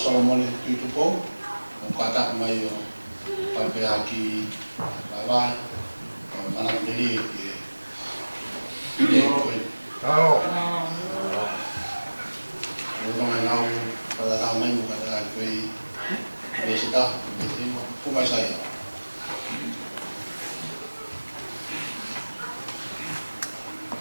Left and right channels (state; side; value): inverted; both; correlation -1.00